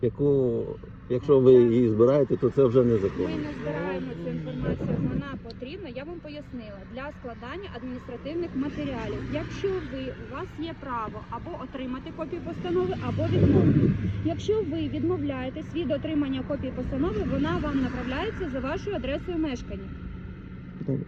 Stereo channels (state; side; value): identical; both; correlation 1.00